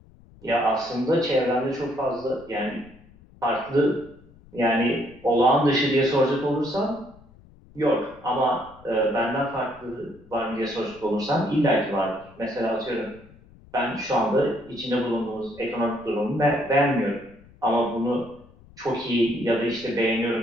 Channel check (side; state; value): left; noise; rumble, 25 dB below the sound